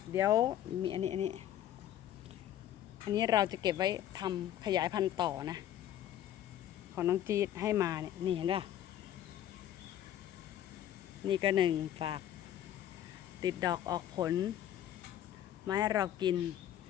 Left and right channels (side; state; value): right; quieter; 11.5 dB